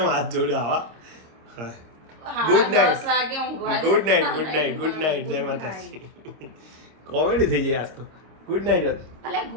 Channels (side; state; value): left; late; 26 ms